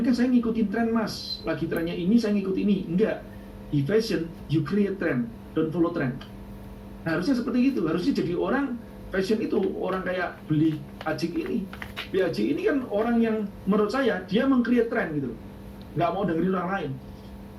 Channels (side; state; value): both; identical; correlation 1.00